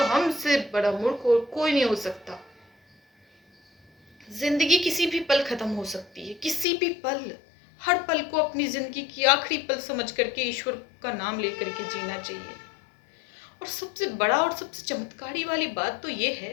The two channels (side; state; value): right; drops out; at 6.7 s